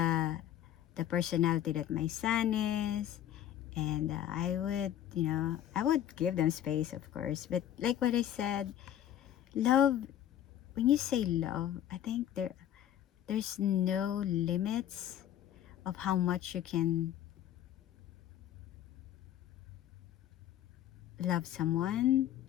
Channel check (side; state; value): right; quieter; 11.2 dB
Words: the personality that my son is, and I would, I would give them space, of course. But like what I said, love. When you say love, I think there's no limits of how much you can love someone